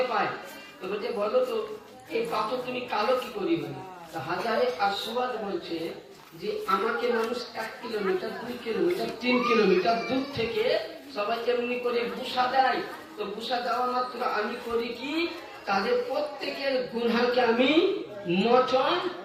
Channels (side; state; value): both; identical; correlation 1.00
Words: পায়। তো বলছে বলো তো এই পাথর তুমি কালো কি করি হয়? হাজারে আসওয়াদ বলছে যে আমাকে মানুষ 1 কিলোমিটার 2 কিলোমিটার 3 কিলোমিটার দূর থেকে সবাই এমনি করে বুসা দেয়। তো বুসা দেওয়া মাত্র আমি করি কি তাদের প্রত্যেকের গুনাহকে আমি মোচন